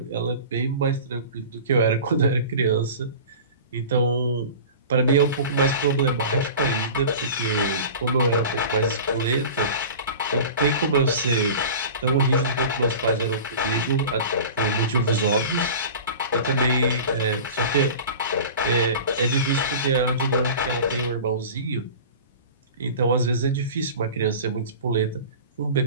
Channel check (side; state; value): both; inverted; correlation -0.37